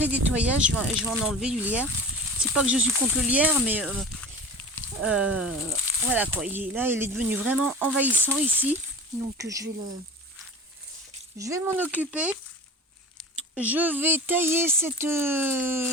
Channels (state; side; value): normal; both; correlation 0.35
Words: nettoyage. Je vais en enlever du lierre. C'est pas que je suis contre le lierre, mais voilà quoi. Là, il est devenu vraiment envahissant ici. Donc je vais m'en occuper. Je vais tailler cette